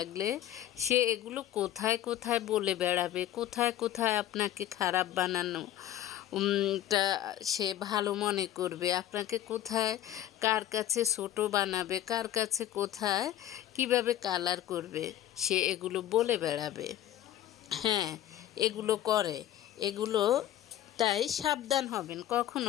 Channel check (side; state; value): right; quieter; 12.6 dB